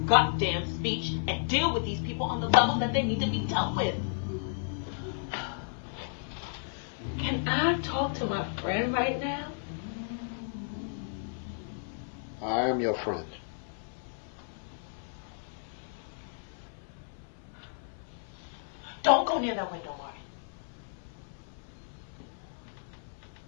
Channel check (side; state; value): right; silent; 56 dB below the other